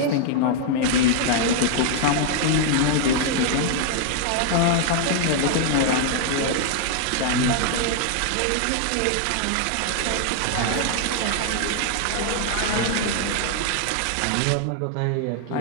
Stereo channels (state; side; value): different; both; correlation 0.00